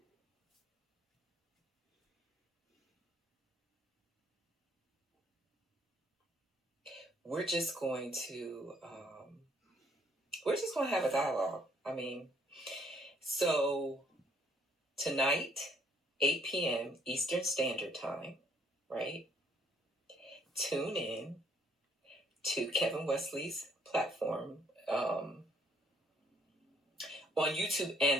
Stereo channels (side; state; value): both; normal; correlation 0.65